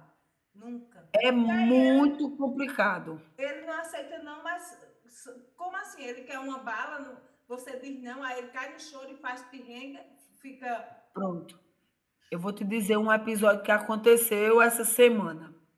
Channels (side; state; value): both; identical; correlation 1.00